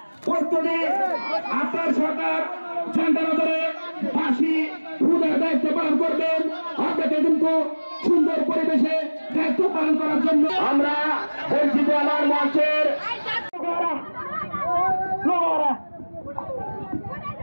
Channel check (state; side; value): inverted; both; correlation -1.00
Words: প্রস্তুতি আপনার সরকার ঝান্ডা ধরে ফাঁসি খুদের দায়িত্ব পালন করবেন। আপনাকে কিন্তু সুন্দর পরিবেশে দায়িত্ব পালন করার জন্য আমরা বলছি যে আমার মঞ্চের